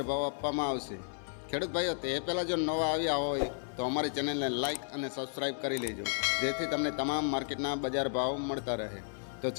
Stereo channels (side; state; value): right; silent; 56 dB below the other